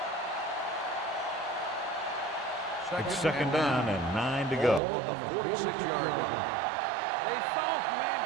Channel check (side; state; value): left; drops out; at 4.8 s